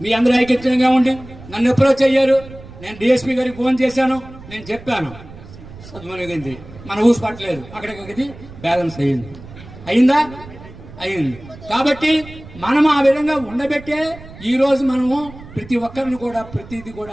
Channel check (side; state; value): right; noise; rumble, 17 dB below the sound